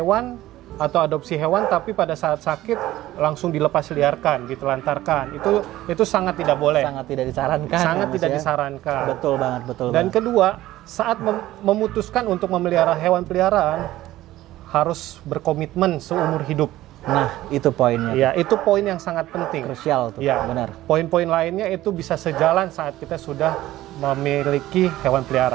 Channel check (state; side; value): quieter; left; 15.5 dB